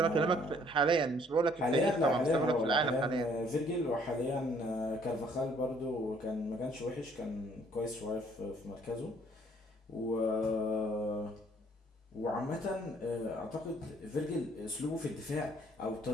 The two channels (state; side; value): normal; both; correlation 0.62